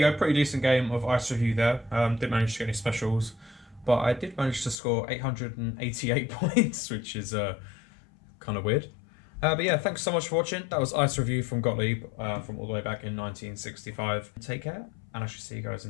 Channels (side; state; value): right; drops out; at 4.8 s